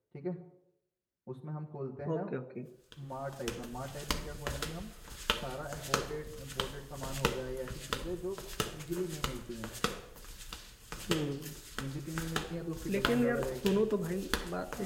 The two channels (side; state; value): both; identical; correlation 1.00